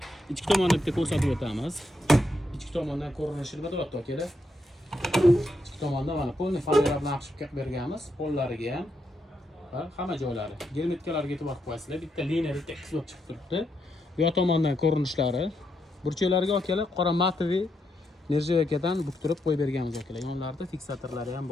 Ichki tomonda bitta ko'rsatib o'tamiz. Ichki tomondan ko'rinishi nima deyapti akalar? Ichki tomonda mana polni fanera bilan qilib berganmiz. Pollariga ham hamma joylari. Germetkalarga e'tibor qo'yasizlar. Bitta liniya bitta qismat chiqib turibdi. Bu yoq tomondan ko'rinishlari. Burchaklariga akalar qora matoviy nerjavakadan buktirib qo'yib berganmiz akalar. Yonlarida fiksatorlari ham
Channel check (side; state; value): both; normal; correlation 0.80